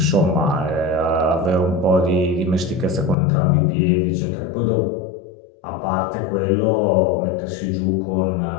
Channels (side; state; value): right; drops out; at 3.2 s